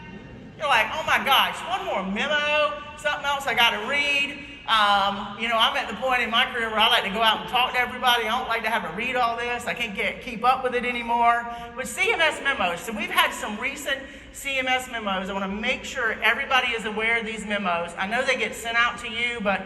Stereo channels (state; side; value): identical; both; correlation 1.00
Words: You're like, oh my gosh, one more memo, something else I got to read. I'm at the point in my career where I like to go out and talk to everybody. I don't like to have to read all this. I can't keep up with it anymore. But CMS memos, so we've had some recent CMS memos. I want to make sure everybody is aware of these memos. I know they get sent out to you, but